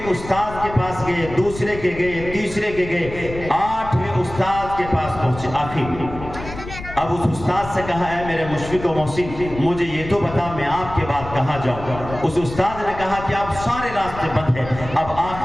استاد کے پاس گئے، دوسرے کے گئے، تیسرے کے گئے، 8ویں استاد کے پاس پہنچے آخر میں۔ اب اس استاد سے کہا اے میرے مشفق و محسن مجھے یہ تو بتا میں آپ کے بعد کہاں جاؤں۔ اس استاد نے کہا کہ اب سارے راستے بند ہیں، اب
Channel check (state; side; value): noise; left; rumble, 12 dB below the sound